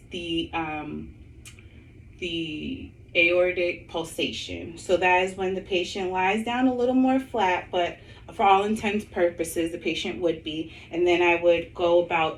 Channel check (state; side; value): identical; both; correlation 1.00